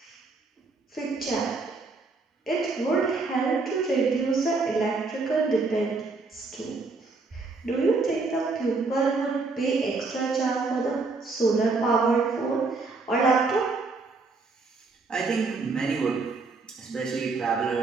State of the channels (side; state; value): left; quieter; 3.9 dB